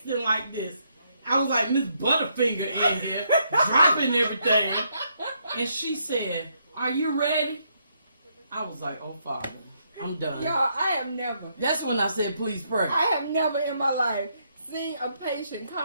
like this. I was like, Miss Butterfinger in here, dropping everything. And she said, are you ready? I was like, oh, Father, I'm done. Y'all, I have never. That's when I said, please pray. I have never in my life seen a patient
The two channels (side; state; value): both; inverted; correlation -0.75